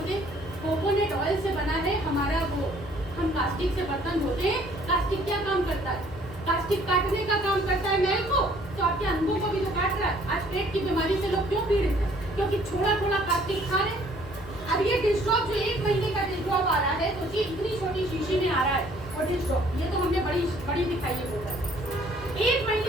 कोकोनट ऑयल से बना है हमारा वो, हम कास्टिक से बर्तन धोते हैं। कास्टिक क्या काम करता है? कास्टिक काटने का काम करता है मैल को, तो आपके अंगों को भी तो काट रहा है। आज पेट की बीमारी से लोग क्यों पीड़ित हैं? क्योंकि थोड़ा कास्टिक खा रहे। अब ये डिश ड्रॉप जो 1 महीने का डिश ड्रॉप आ रहा है, सोचिए इतनी छोटी शीशी में आ रहा है और डिश ड्रॉप, ये तो हमने बड़ी दिखाई है बोतल। 1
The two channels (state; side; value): noise; left; hum, 16 dB below the sound